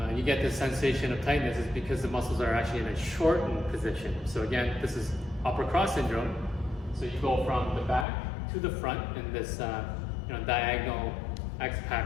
you get this sensation of tightness is because the muscles are actually in a shortened position. So again, this is upper cross syndrome. So you go from the back to the front in this diagonal X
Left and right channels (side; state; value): right; drops out; at 8.1 s